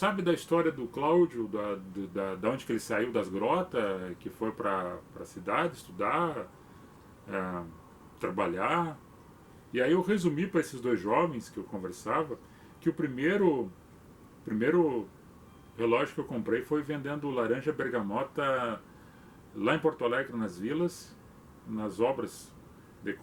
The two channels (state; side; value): identical; both; correlation 1.00